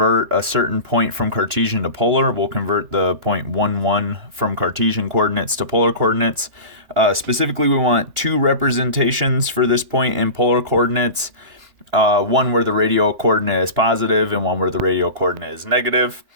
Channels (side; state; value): left; late; 2.9 ms